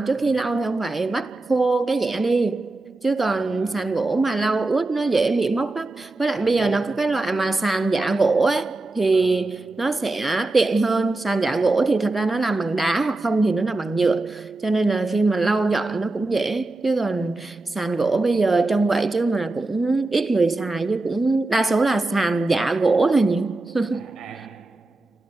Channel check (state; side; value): quieter; left; 3.0 dB